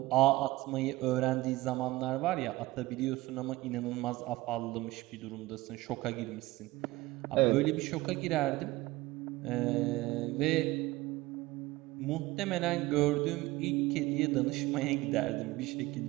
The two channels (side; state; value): left; quieter; 18.8 dB